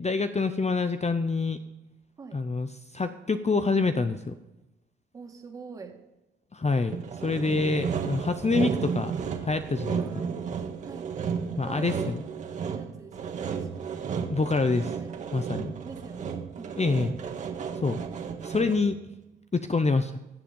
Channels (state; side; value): normal; both; correlation 0.69